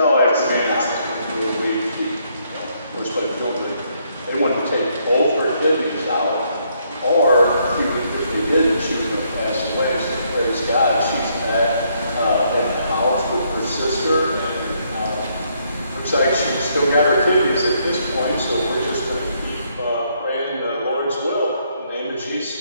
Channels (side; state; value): both; inverted; correlation -0.72